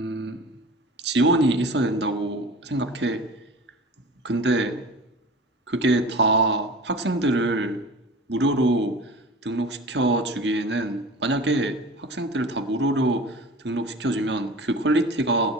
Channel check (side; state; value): both; normal; correlation 0.38